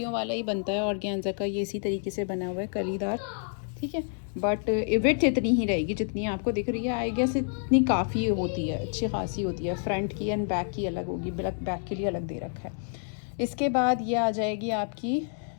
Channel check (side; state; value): right; silent; 59 dB below the other